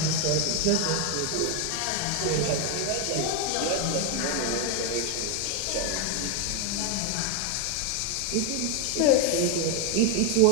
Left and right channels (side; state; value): both; different; correlation 0.01